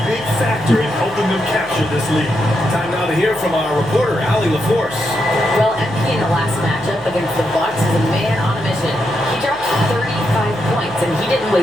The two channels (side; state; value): left; noise; hum, 23 dB below the sound